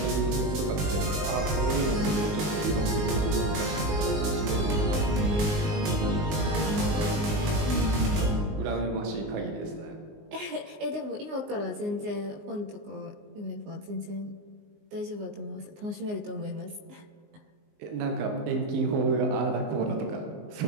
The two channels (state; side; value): late; left; 19 ms